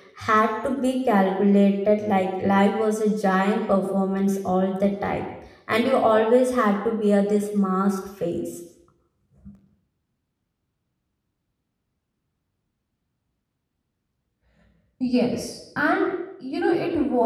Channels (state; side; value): identical; both; correlation 1.00